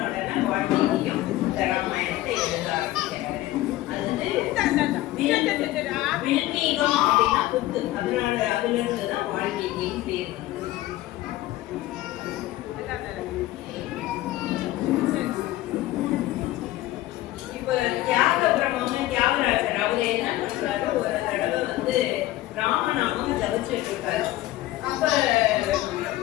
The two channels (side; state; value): right; quieter; 16.1 dB